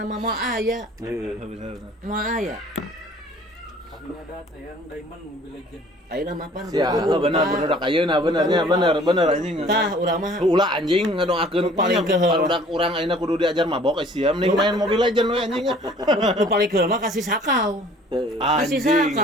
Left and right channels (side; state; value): both; normal; correlation 0.52